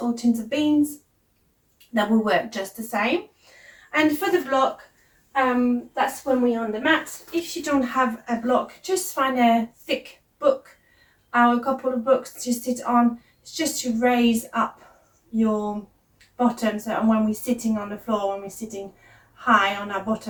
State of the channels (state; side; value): identical; both; correlation 1.00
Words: or tins of beans. That will work just the same. And for the block, that's when we're on the mat. If you don't have a block, just find a thick book or a couple of books to sit on. It's just to raise up your bottom, so when we're sitting on the floor, when we're sitting high on our